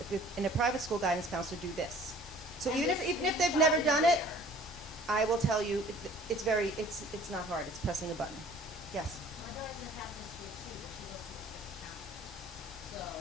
in a private school guidance counselor, do this. So And even the if they've screenshot never is done it, there. I will tell you it's not hard. It's pressing a button. Yes. My daughter's in a Catholic school too, but she goes to a different county. So,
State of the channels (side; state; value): both; normal; correlation 0.51